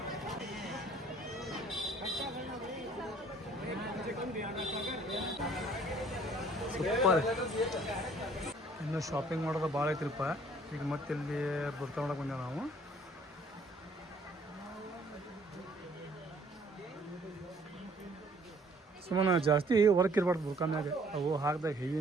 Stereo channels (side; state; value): both; normal; correlation 0.58